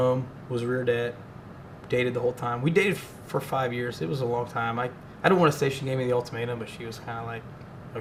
was rear det, dated the whole time. We dated for 5 years. It was a long time. I don't want to say she gave me the ultimatum, but she was kind of like,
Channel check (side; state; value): both; identical; correlation 1.00